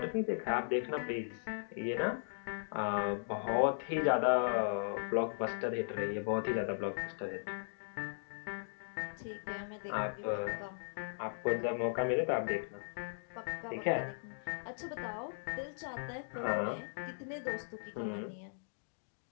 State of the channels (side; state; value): right; silent; digital silence